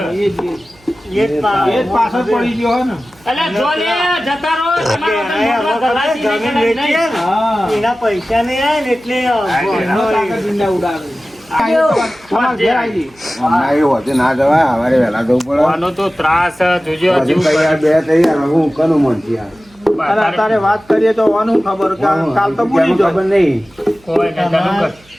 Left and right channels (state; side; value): noise; right; hum, 29 dB below the sound